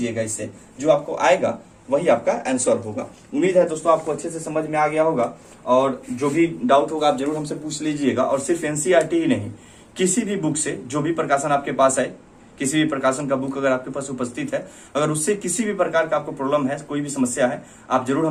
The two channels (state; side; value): identical; both; correlation 1.00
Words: इससे जो आपको आएगा वही आपका आंसर होगा। उम्मीद है दोस्तों आपको अच्छे से समझ में आ गया होगा, और जो भी डाउट होगा आप जरूर हमसे पूछ लीजिएगा। और सिर्फ एनसीईआरटी ही नहीं, किसी भी बुक से जो भी प्रकाशन आपके पास है, किसी भी प्रकाशन का बुक अगर आपके पास उपस्थित है, अगर उससे किसी भी प्रकार का आपको प्रॉब्लम है, कोई भी समस्या है, आप जरूर